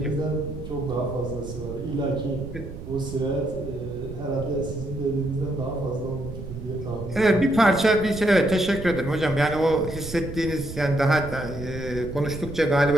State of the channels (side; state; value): right; noise; rumble, 10 dB below the sound